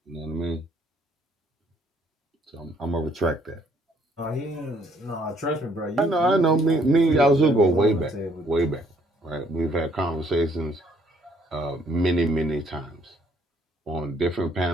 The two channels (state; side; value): normal; both; correlation 0.65